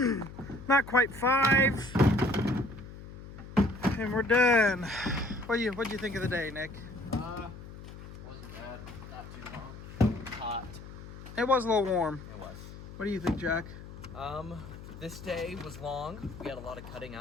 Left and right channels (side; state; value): left; noise; hum, 14 dB below the sound